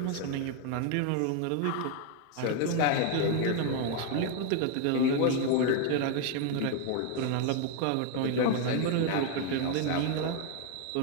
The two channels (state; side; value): different; both; correlation 0.01